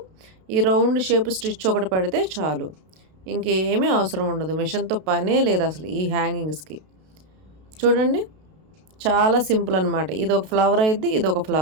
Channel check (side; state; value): left; late; 32 ms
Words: ఈ రౌండ్ షేప్ స్టిచ్ ఒకటి పడితే చాలు, ఇంకేమీ అవసరం ఉండదు. మెషిన్తో పనే లేదు అసలు ఈ హ్యాంగింగ్స్కి. చూడండి, చాలా సింపుల్ అనమాట. ఇది ఒక ఫ్లవర్ అయిద్ది, ఇది ఒక